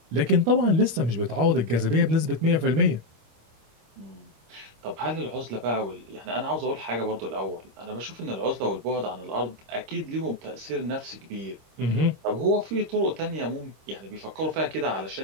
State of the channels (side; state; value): left; late; 26 ms